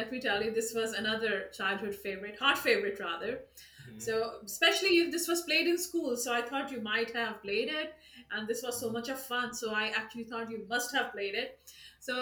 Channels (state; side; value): identical; both; correlation 1.00